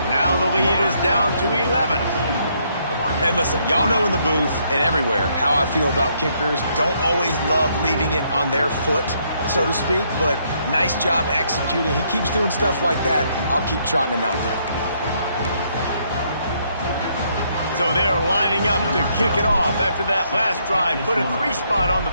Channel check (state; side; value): inverted; both; correlation -0.72